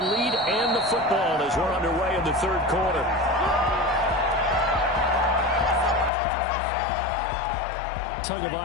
and the football as we're underway in the third quarter.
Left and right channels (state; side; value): drops out; right; at 6.1 s